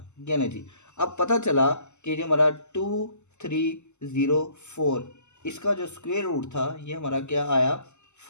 ये ना जी, अब पता चला कि जो हमारा 2304 इसका जो स्क्वायर रूट था ये हमारा क्या आया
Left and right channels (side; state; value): right; late; 0.83 ms